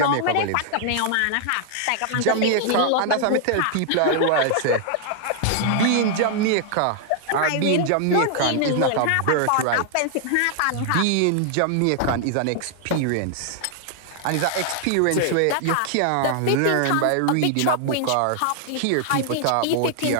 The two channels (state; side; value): different; both; correlation 0.00